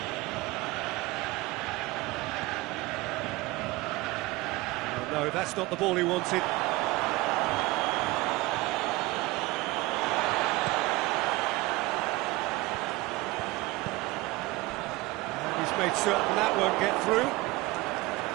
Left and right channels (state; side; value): quieter; left; 20.9 dB